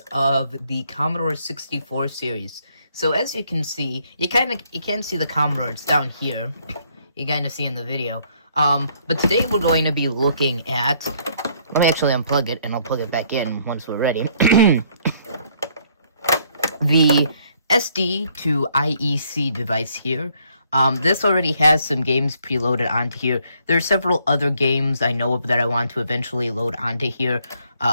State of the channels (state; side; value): inverted; both; correlation -0.67